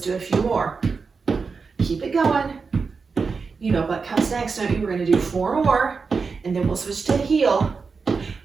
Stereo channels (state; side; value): quieter; left; 4.9 dB